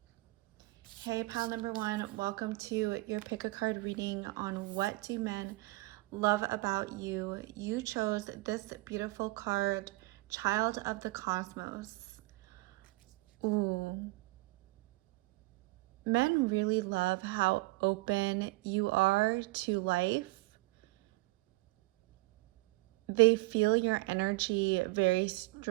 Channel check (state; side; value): quieter; left; 22.5 dB